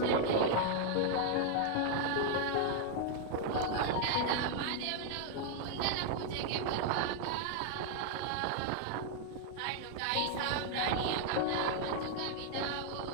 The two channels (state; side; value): different; both; correlation 0.00